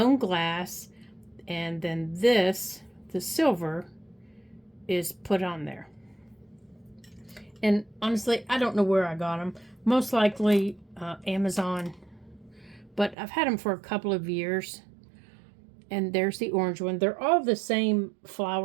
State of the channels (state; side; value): drops out; left; at 13.2 s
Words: glass. And then this, the silver, is put on there. And honestly, I don't know where I got them. Most likely Amazon. But I've had them for a couple of years. And there's the orange one. They're all the same